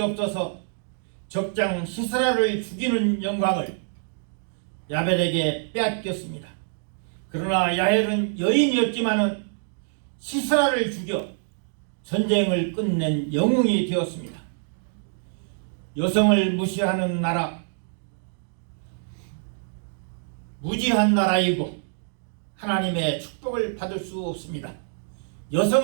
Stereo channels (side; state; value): left; silent; digital silence